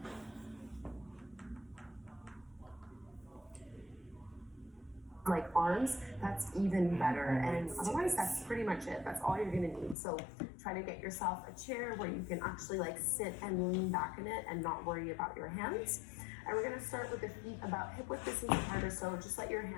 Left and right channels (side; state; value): right; drops out; at 10.0 s